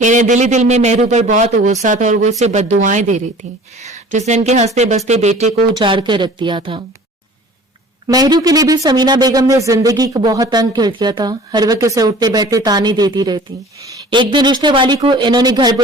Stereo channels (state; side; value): normal; both; correlation 0.46